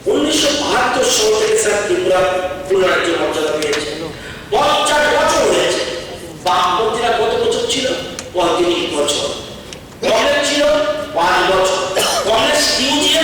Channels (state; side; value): identical; both; correlation 1.00